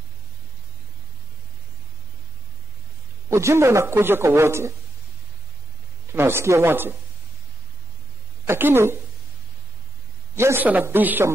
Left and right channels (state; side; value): normal; both; correlation 0.84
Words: Ujumbe unakuja kwa wote, tunausikia wote, lakini Yesu anabisha